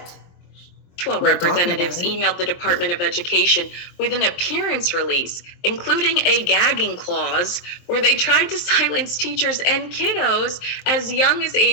12 representatives emailed the Department of Education with an appearance release, including a gagging clause where they tried to silence teachers and kiddos as young as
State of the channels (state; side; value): late; right; 23 ms